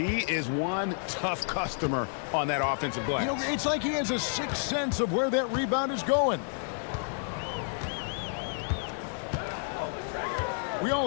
is one tough customer on that offensive glass. You know, it's like he has a sixth sense of where that rebound is going. We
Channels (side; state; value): right; silent; digital silence